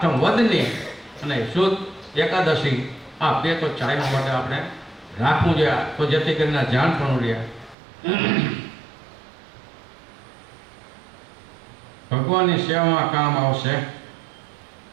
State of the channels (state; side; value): drops out; left; at 7.8 s